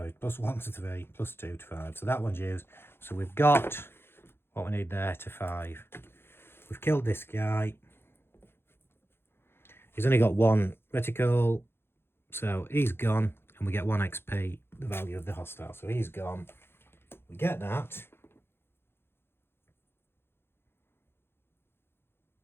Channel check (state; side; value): late; right; 0.11 ms